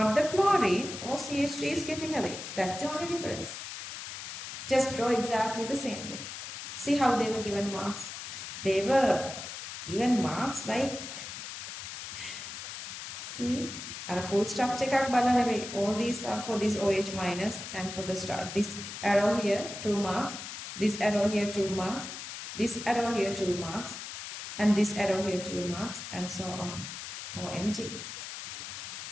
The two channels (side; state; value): left; noise; hiss, 9 dB below the sound